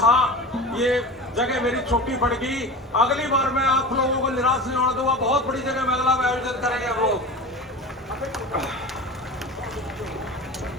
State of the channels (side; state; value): both; normal; correlation 0.32